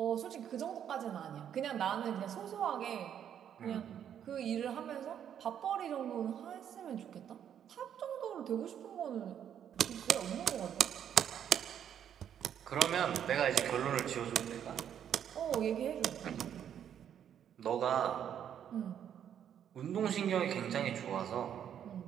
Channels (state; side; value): quieter; left; 9.3 dB